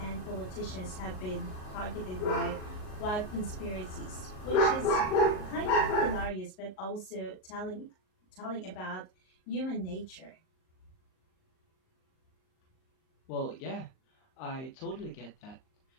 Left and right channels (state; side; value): late; right; 38 ms